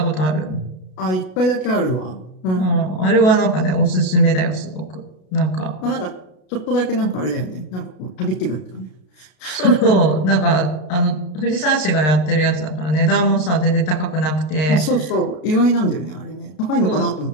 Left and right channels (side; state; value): right; late; 33 ms